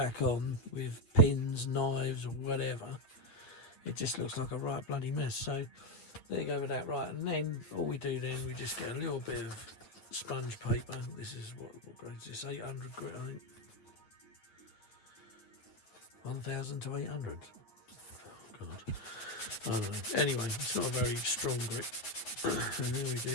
on with pins, knives or whatever, it just looks like a right bloody mess. So there you go with that. Right, and then all we do then, we just get a little bit of sponge paper. This is what grade is this? 800 grit, I think. 1000 to 800. Oh God, I don't know. Anyway, it's not a very strong grip. And then we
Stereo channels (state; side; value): late; right; 9.1 ms